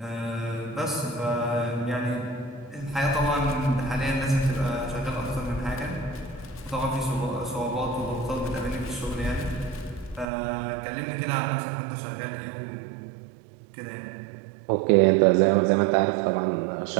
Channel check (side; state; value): left; drops out; at 10.2 s